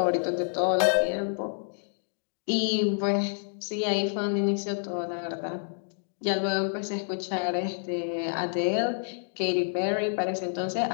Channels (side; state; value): right; silent; digital silence